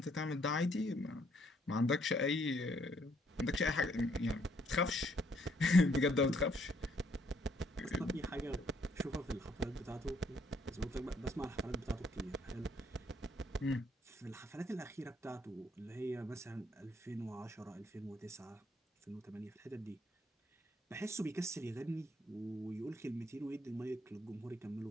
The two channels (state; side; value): normal; both; correlation 0.69